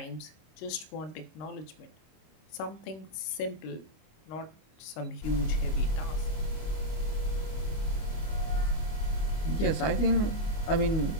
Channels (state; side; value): late; right; 26 ms